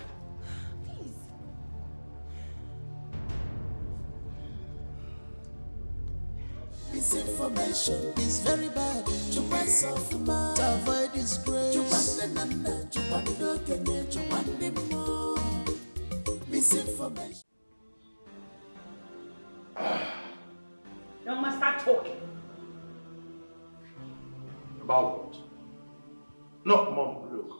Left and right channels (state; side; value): inverted; both; correlation -1.00